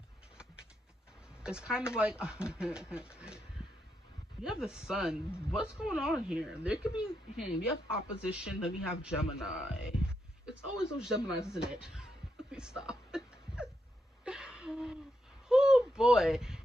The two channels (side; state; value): both; normal; correlation 0.82